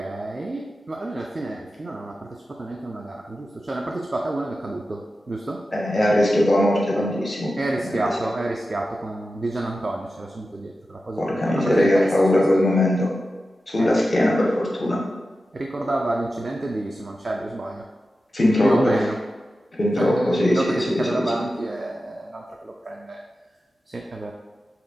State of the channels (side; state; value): both; normal; correlation 0.92